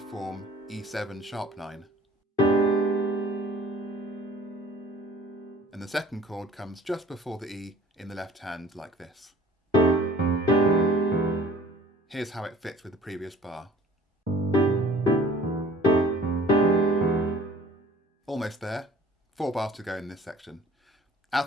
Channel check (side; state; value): both; normal; correlation 0.51